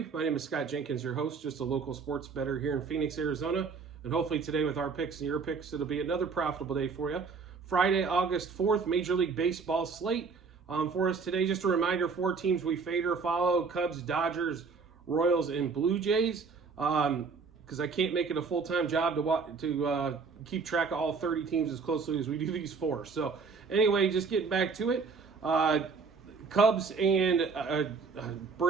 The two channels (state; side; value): quieter; left; 5.0 dB